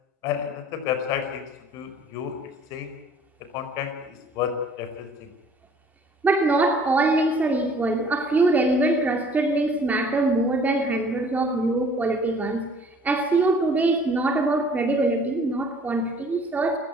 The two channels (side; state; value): both; normal; correlation 0.54